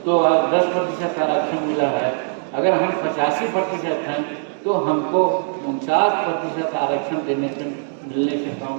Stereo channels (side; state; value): left; silent; digital silence